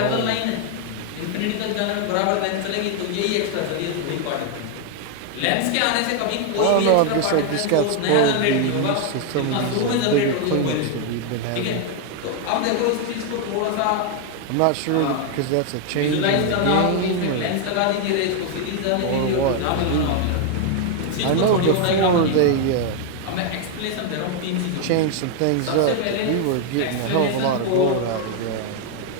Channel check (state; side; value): different; both; correlation 0.00